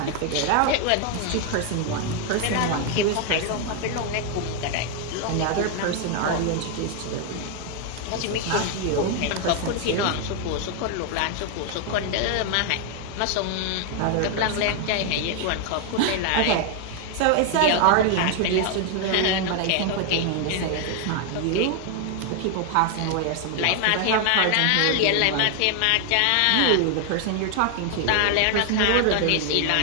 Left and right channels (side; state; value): both; different; correlation 0.00